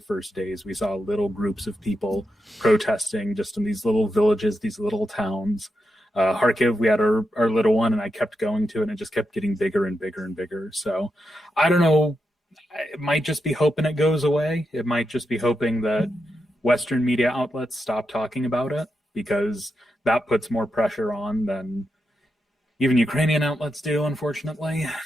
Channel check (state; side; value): normal; both; correlation 0.86